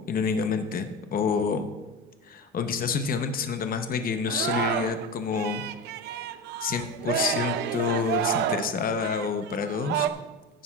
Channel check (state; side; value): normal; both; correlation 0.23